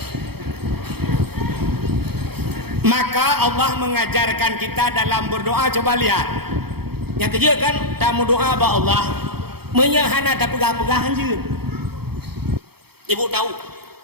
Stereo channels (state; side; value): late; left; 0.96 ms